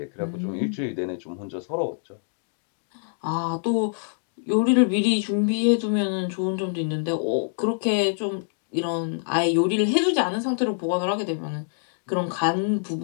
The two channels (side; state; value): right; silent; digital silence